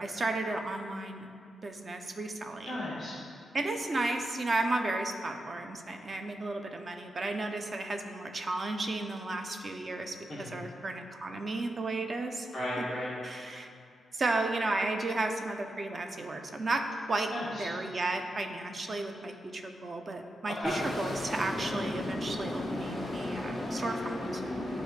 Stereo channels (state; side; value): normal; both; correlation 0.87